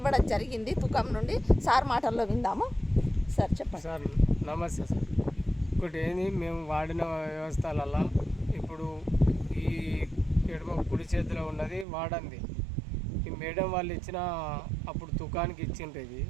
జరిగింది తుకం నుండి. సార్ మాటల్లో విందాము. సార్ చెప్పండి. సార్ నమస్తే సార్. ఒకటి ఏంది, మేము వాడిన వ్యవస్థలలో ఇప్పుడు ఈ ఎడమ కుడి చేతిలో ఉన్నది వాడంది. ఈ మేడం వాళ్ళు ఇచ్చిన అప్పుడు తుకానికి ఇచ్చిండ్రు. ఇది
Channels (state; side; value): drops out; left; at 11.9 s